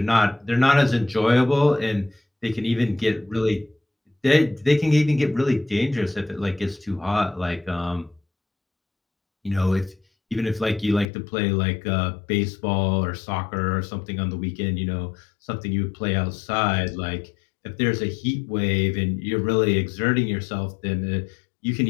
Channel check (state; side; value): drops out; right; at 11.1 s